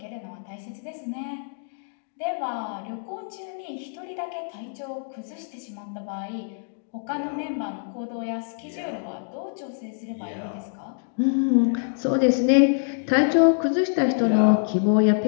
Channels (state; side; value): silent; right; digital silence